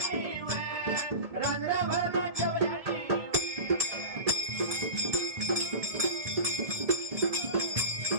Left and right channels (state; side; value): late; left; 1.7 ms